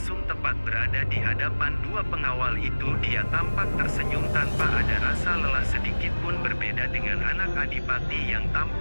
tepat berada di hadapan dua pengawal itu. Dia tampak tersenyum tanpa ada rasa lelah sedikit pun, berbeda dengan anak adipati yang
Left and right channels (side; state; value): both; inverted; correlation -1.00